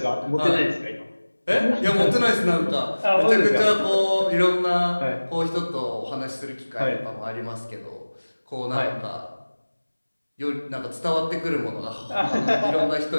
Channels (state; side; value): inverted; both; correlation -1.00